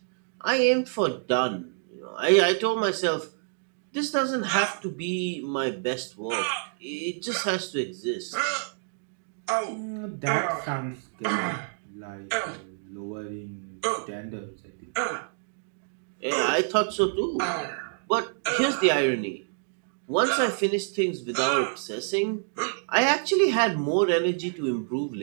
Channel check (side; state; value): left; silent; digital silence